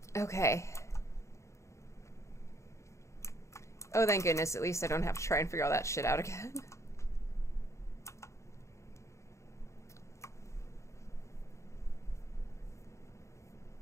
Okay. Oh, thank goodness, at least I don't have to try and figure all that shit out again.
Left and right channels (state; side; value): late; right; 0.14 ms